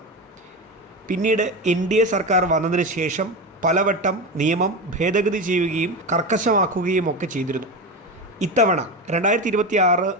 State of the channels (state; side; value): normal; both; correlation 0.20